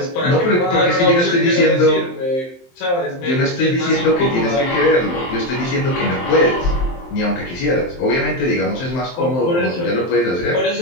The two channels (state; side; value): late; right; 23 ms